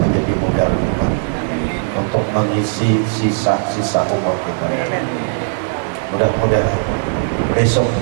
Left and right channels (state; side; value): silent; left; digital silence